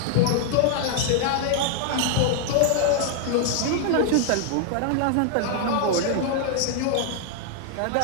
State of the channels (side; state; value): both; different; correlation 0.00